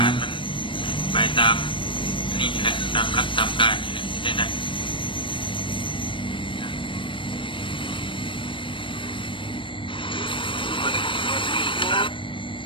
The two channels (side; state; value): right; late; 0.25 ms